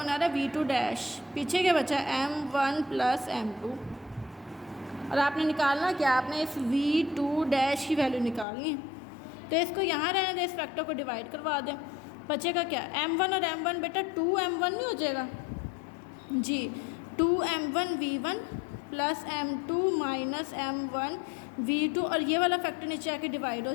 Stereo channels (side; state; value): right; drops out; at 8.5 s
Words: आ रहा है v2 डैश, पीछे क्या बचा m1 प्लस m2। और आपने निकालना क्या, आपने इस v2 डैश की वैल्यू निकालनी है, तो इसको यहाँ रहने दें, इस फैक्टर को डिवाइड करवा दें, बचेगा क्या m1 और m1, बेटा 2m1 नहीं हो जाएगा जी, 2m1 v1 plus m2 minus m1 v2, और ये वाला फैक्टर नीचे आके डिवाइड हो